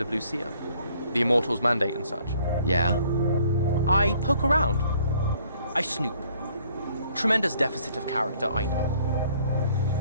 of Lucia? The Immortals' mandate and such? Yeah? I poke around. I snoop. Tremendous deficit of character, I know.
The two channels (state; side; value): inverted; both; correlation -0.62